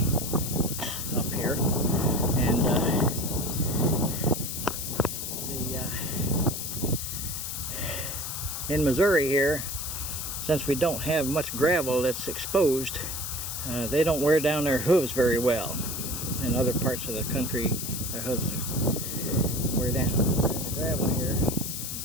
up here, and in Missouri here, since we don't have much gravel that's exposed, they don't wear down their hooves very well. In other parts of the country, their hooves wear down. They're in the gravel here,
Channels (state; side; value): noise; left; hiss, 5 dB below the sound